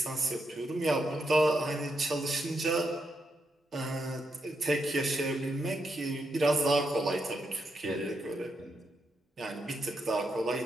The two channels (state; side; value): normal; both; correlation 0.82